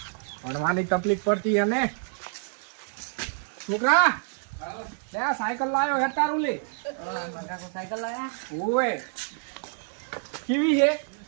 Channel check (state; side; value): silent; left; 60 dB below the other